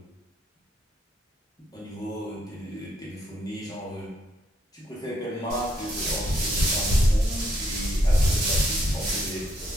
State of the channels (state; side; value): normal; both; correlation 0.74